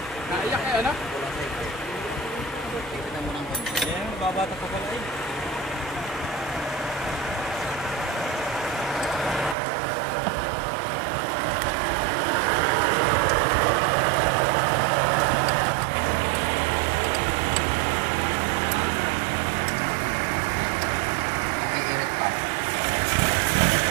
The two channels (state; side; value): drops out; left; at 9.6 s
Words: naiyak eh, ano? Ayan, babata pa pala eh.